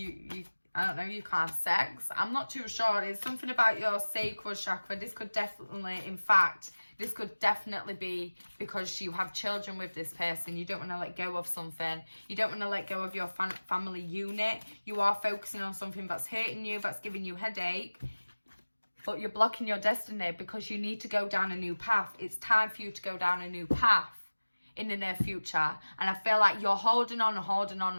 I don't know, you can't have sex. I'm not too sure. It's something about your sacral chakra. This could definitely, in fact, this could definitely be because you have children with this person. You don't want to let go of something. You don't want to let go of your family unit. You are focusing on something that's hurting you, that's giving you headache. But you're blocking your destiny because you need to go down a new path. It's time for you to go down a new path in the near future. And I feel like you're holding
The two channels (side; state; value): both; inverted; correlation -1.00